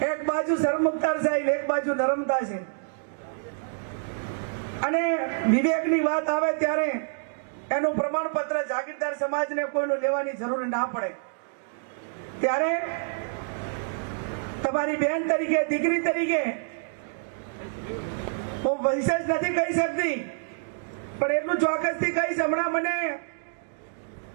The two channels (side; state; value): left; silent; digital silence